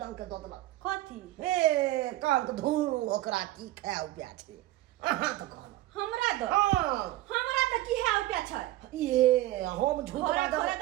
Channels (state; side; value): quieter; left; 16.2 dB